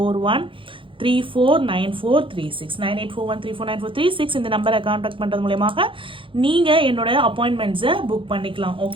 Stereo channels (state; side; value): late; left; 0.25 ms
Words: 9841349436 இந்த நம்பரை காண்டாக்ட் பண்றது மூலமாக நீங்க என்னோட அப்பாயின்மெண்ட்ஸை புக் பண்ணிக்கலாம்.